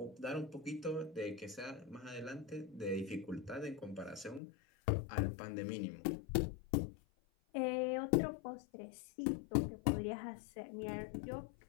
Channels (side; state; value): right; drops out; at 4.4 s